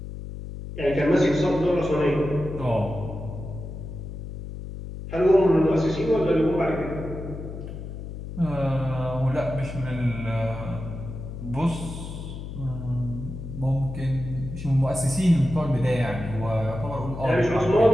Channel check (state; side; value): noise; left; hum, 9 dB below the sound